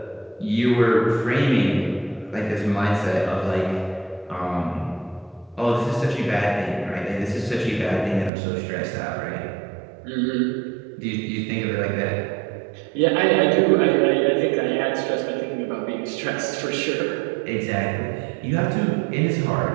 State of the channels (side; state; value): left; drops out; at 8.3 s